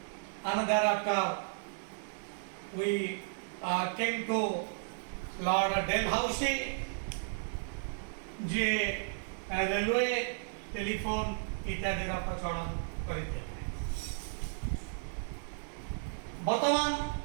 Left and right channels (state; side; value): silent; left; digital silence